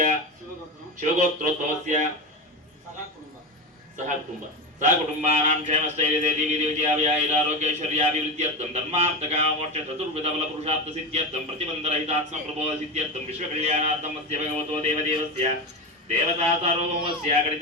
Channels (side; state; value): both; normal; correlation 0.19